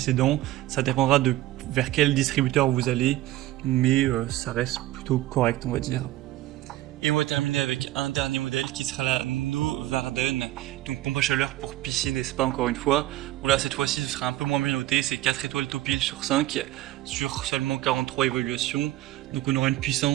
Ça dépendra de vers quel distributeur vous allez, mais ça reste plutôt correct, on va dire. Et on va terminer avec un dernier modèle qui sera la Novarden, donc pompe à chaleur pour piscine et spa encore une fois. Bon là cette fois-ci ce sera un peu moins bien noté, c'est 4 étoiles Topil sur 5 sur seulement 43 évaluations. Donc on aura une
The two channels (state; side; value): quieter; left; 15.7 dB